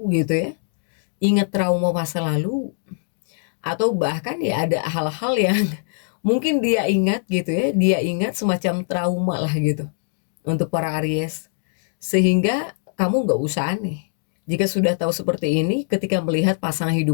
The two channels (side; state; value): right; silent; digital silence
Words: gitu ya, ingat trauma masa lalu, atau bahkan ya ada hal-hal yang mungkin dia ingat gitu ya, dia ingat semacam trauma lah gitu untuk para Aries, sehingga kamu nggak usah aneh jika sudah tahu seperti ini ketika melihat pasangan